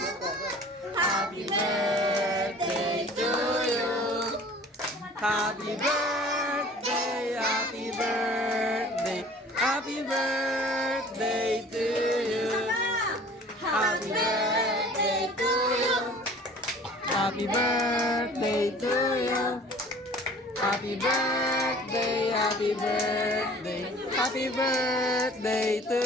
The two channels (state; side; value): normal; both; correlation 0.48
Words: Happy birthday to you! Happy birthday, happy birthday, happy birthday to you. Happy birthday to you. Happy birthday to you. Happy birthday, happy birthday, happy birthday to